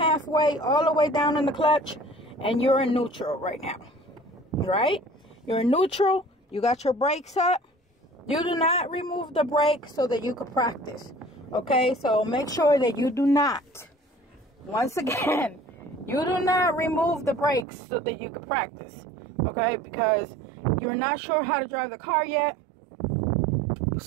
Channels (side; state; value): left; drops out; at 17.7 s